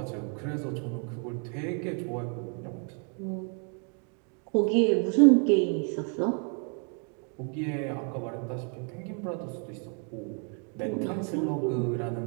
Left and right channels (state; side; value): quieter; left; 39.9 dB